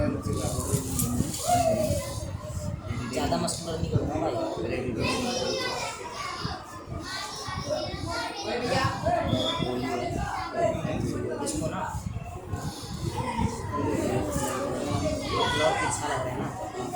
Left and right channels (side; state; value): both; identical; correlation 1.00